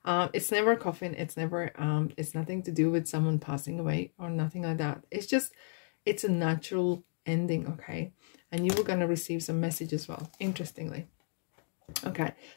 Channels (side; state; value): right; silent; 56 dB below the other